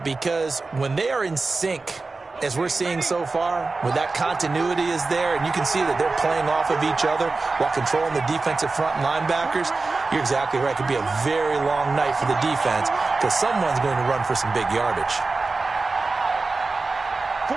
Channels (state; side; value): quieter; left; 3.8 dB